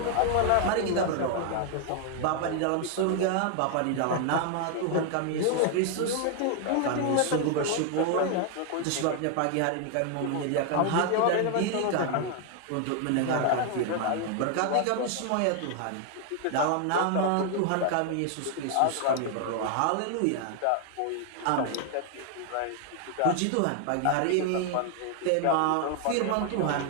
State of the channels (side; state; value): both; different; correlation 0.00